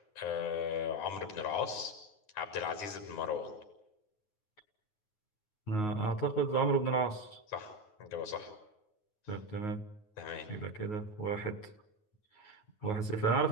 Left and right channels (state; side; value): late; right; 9.5 ms